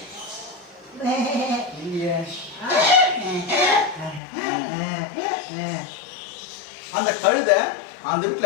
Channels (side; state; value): right; drops out; at 4.2 s